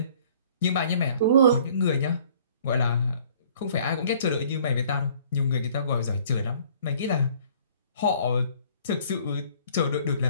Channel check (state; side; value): inverted; both; correlation -0.55